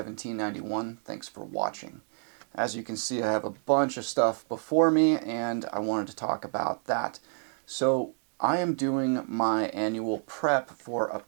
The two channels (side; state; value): left; silent; 56 dB below the other